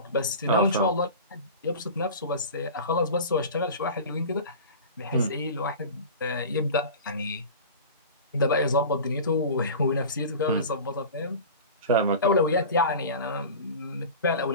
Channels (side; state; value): both; inverted; correlation -0.35